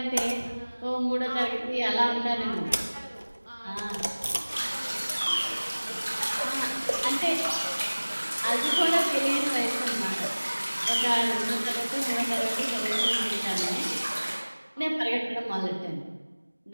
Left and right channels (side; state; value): both; inverted; correlation -1.00